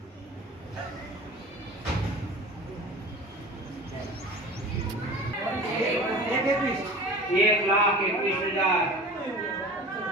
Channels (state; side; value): normal; both; correlation 0.38